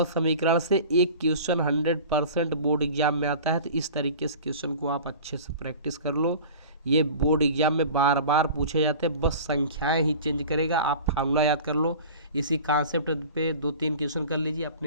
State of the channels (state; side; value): inverted; both; correlation -0.40